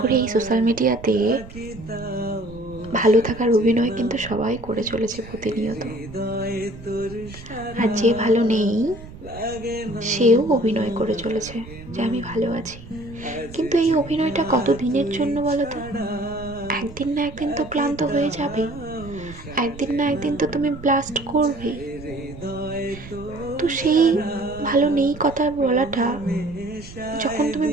এই সোশ্যাল মিডিয়াতে ভালো থাকার অভিনয় কিন্তু সবাই করে চলেছে প্রতিনিয়ত। আর যে ভালো নেই সেও অভিনয় করে চলেছে যে আমি ভালো আছি। কিন্তু এই অভিনয়টা কত দিনের জন্য বলো তো? একদিন না একদিন তো ক্লান্ত হয়ে যাবে, একদিন না একদিন তো তুমি ব্লাস্ট করবে। তো সেই ভালো নেই কথা বলাটা, যখন তুমি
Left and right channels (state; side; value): noise; right; rumble, 16 dB below the sound